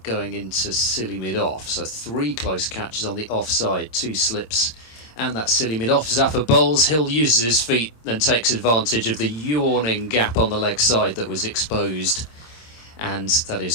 going into silly mid-off, so 3 close catches on the offside, 2 slips and that silly mid-off. Zaffer bowls, Hill uses his feet and takes advantage of the yawning gap on the leg side that was exposed, and that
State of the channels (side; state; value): right; late; 26 ms